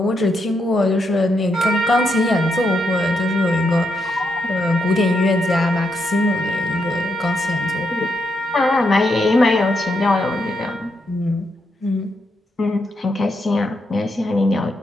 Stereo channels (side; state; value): both; normal; correlation 0.81